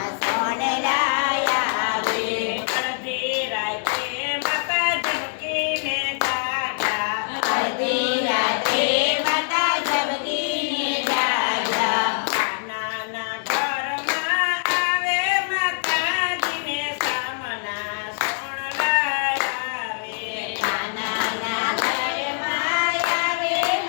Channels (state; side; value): silent; right; 63 dB below the other